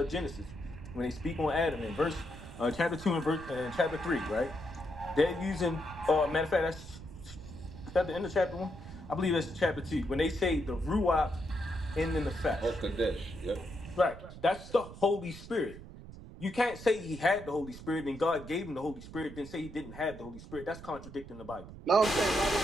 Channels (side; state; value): right; noise; rumble, 14 dB below the sound